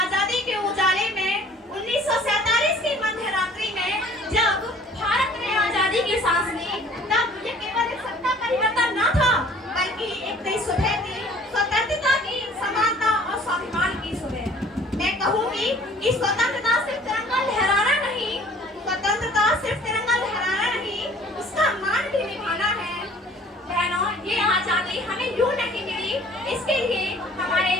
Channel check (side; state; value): both; normal; correlation 0.52